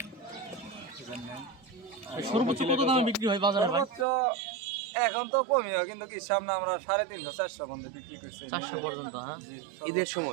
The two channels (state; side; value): drops out; left; at 4.0 s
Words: বুঝেন না। সর্বোচ্চ কত দামে বিক্রি হয় বাজারে ভাই? সর্বোচ্চ এখন তো কমই হয়, কিন্তু কি সামনে আমরা 350-400 পর্যন্ত বিক্রি করছি 400 পর্যন্ত। হ্যাঁ, জি, ঈদের